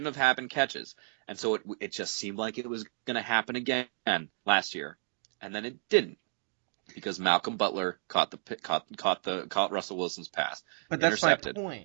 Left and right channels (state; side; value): silent; left; digital silence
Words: have happened catches. And so it just seemed like it was going to happen again last year. And then it didn't. Because Malcolm Butler caught Russell Wilson's pass. But that's my